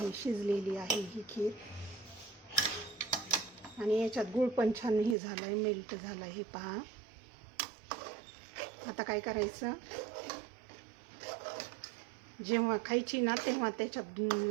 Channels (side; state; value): left; drops out; at 5.2 s